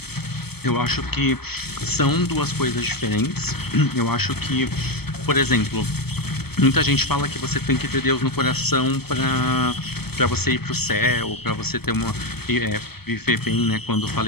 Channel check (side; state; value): right; late; 0.96 ms